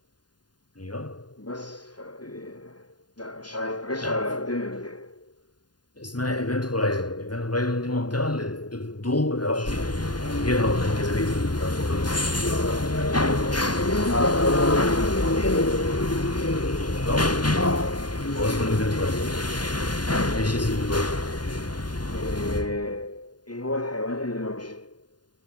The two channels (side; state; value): right; late; 0.70 ms